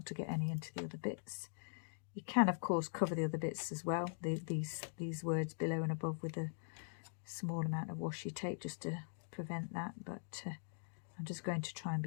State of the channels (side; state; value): right; silent; digital silence